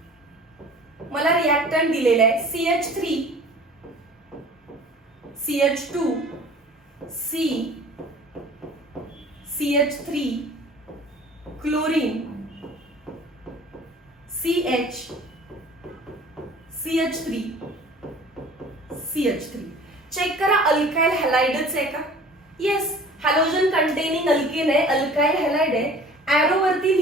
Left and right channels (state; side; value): normal; both; correlation 0.46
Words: मला रिएक्टंट दिलेलं आहे CH3 CH2 C CH3 chlorine CH CH3 CH3. Check करा अल्काइल हॅलाइडच आहे का? येस, हॅलोजन कंटेनिंग अल्केन आहे, अल्काइल हॅलाइड आहे. ऍरो वरती